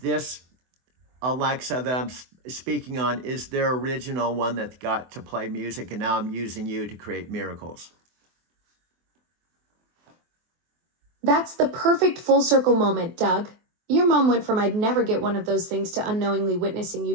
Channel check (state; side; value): late; left; 24 ms